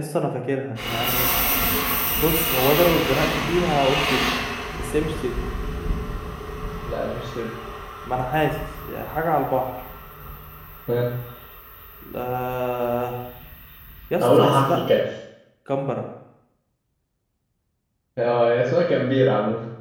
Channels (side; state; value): both; identical; correlation 1.00